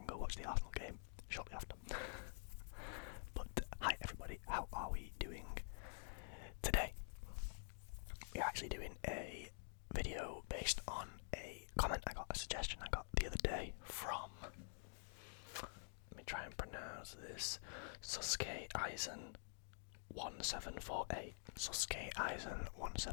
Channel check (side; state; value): right; silent; digital silence